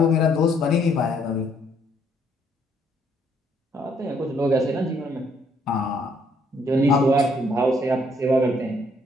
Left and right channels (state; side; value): normal; both; correlation 0.68